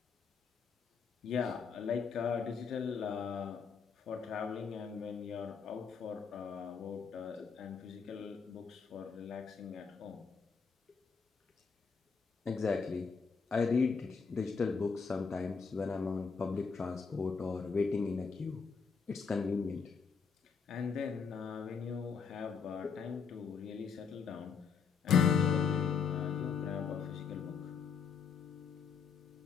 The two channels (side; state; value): right; quieter; 5.9 dB